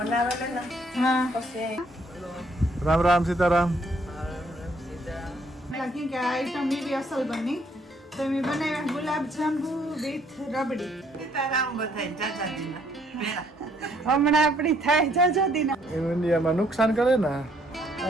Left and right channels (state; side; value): normal; both; correlation 0.67